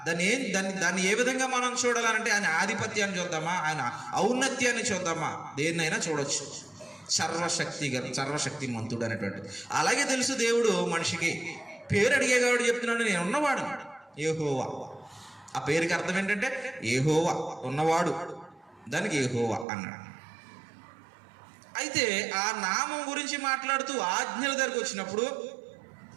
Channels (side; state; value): left; drops out; at 19.7 s